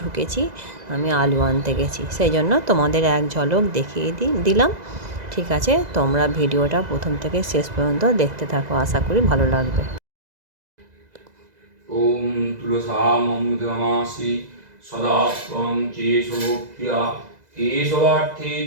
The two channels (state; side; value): late; left; 2.0 ms